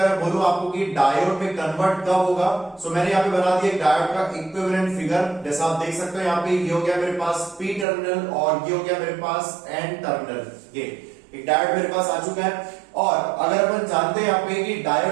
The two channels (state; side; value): drops out; left; at 7.9 s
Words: मैं बोलूं आपको कि डायोड में कन्वर्ट कब होगा, सो मैंने यहाँ पे बना दिया डायोड का इक्विवेलेंट फिगर। जैसा आप देख सकते हो यहाँ पे ये हो गया मेरे पास पी टर्मिनल और ये हो गया मेरे पास एन टर्मिनल। ये एक डायोड मेरे पास आ चुका है। और अगर अपन जानते हैं यहाँ पे कि